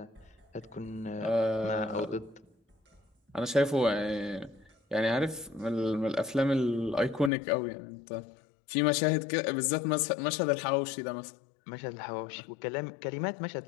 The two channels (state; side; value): drops out; right; at 7.3 s